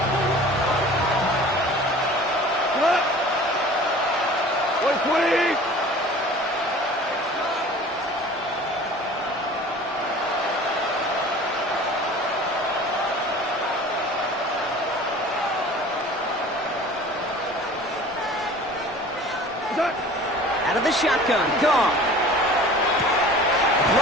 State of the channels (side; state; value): both; normal; correlation 0.44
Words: Out of the shotgun, Goff.